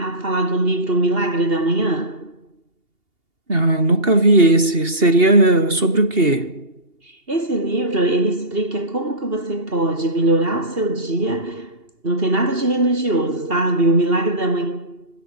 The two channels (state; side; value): late; left; 2.8 ms